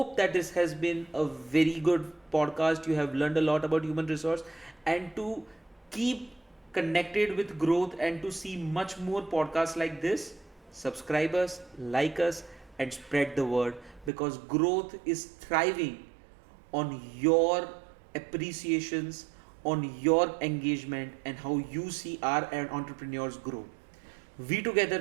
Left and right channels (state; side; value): drops out; left; at 14.1 s